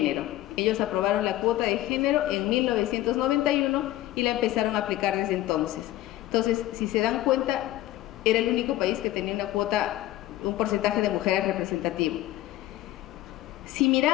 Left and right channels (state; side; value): quieter; right; 15.2 dB